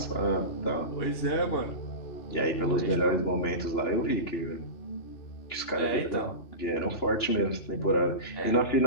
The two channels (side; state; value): right; late; 2.9 ms